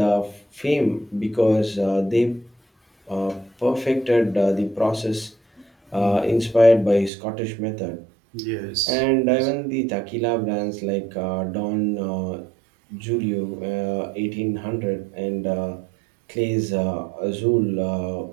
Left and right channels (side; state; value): left; drops out; at 7.1 s